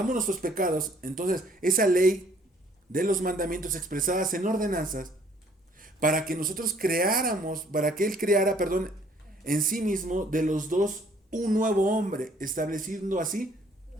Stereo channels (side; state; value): both; normal; correlation 0.61